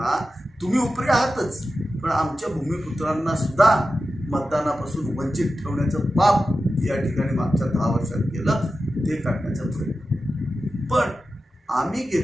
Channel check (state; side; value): normal; both; correlation 0.93